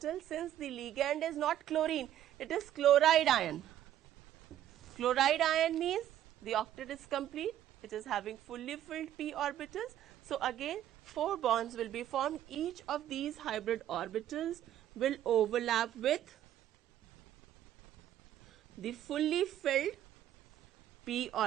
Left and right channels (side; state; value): left; quieter; 11.8 dB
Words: since the ligand is not chlorine, it is chloride ion. Chloride ion means the octet is complete. It is having fully filled p orbitals. So again 4 bonds will be formed. Each of these hybrid orbitals will overlap with the fully filled p